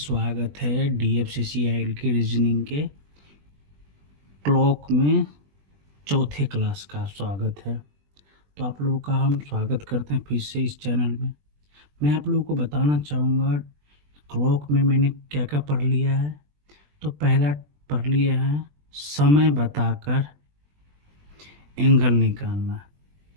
है DFCCIL की रीजनिंग के क्लॉक में चौथे क्लास का स्वागत है। तो आप लोगों का हम स्वागत करते हैं फिर से इस चैनल में। मैं आप लोगों को बताना चाहूँगा क्लॉक में मैंने क्या क्या पढ़ लिया है। तो पहला पढ़ लिया है समय बताकर एंगल निकालना,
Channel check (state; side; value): late; left; 20 ms